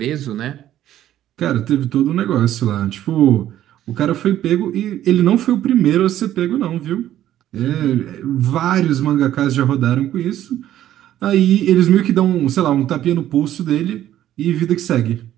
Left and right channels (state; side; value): quieter; left; 12.4 dB